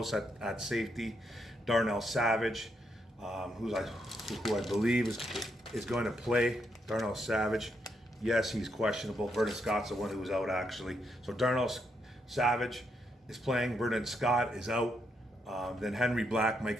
at safety, Darnell Savage, who I believe is going to play. Darnell Savage. Yes, he's questionable. Vernon Scott's the one who was out, actually. So Darnell Savage is playing. Vernon Scott is out. Then Henry Black might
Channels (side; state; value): both; normal; correlation 0.79